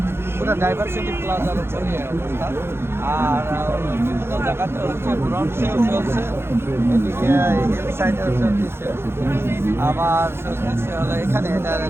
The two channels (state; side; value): late; left; 0.12 ms